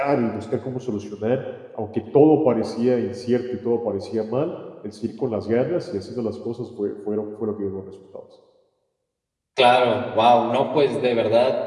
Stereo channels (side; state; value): both; identical; correlation 1.00